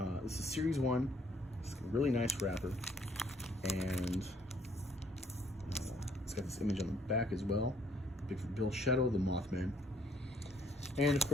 This is Series 1. It's a really nice wrapper, and it's got this image on the back as well. Bigfoot Bill, Shadow, the Mothman. And of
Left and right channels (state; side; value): normal; both; correlation 0.65